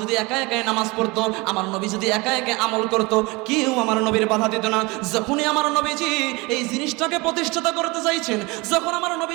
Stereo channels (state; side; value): quieter; left; 25.1 dB